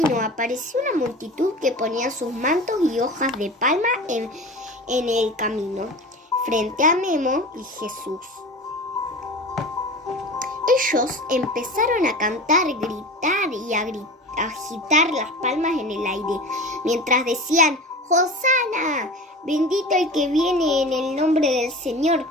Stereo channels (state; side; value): normal; both; correlation 0.34